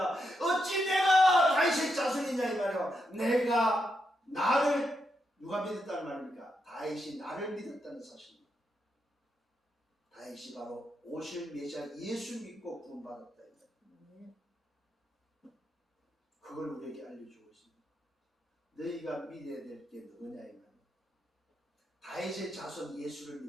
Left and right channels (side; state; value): both; normal; correlation 0.83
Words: 어찌 내가 다윗의 자손이냐 이 말이에요. 내가 나를 누가 믿었다는 말입니까? 다윗이 나를 믿었다는 사실입니다. 다윗이 바로 오실 메시아 예수 믿고 구원받았다 이 말이에요. 그걸 우리에게 알려주고 있습니다. 너희가 믿어야 될 게 누구냐 이 말이에요. 다윗의 자손 예수를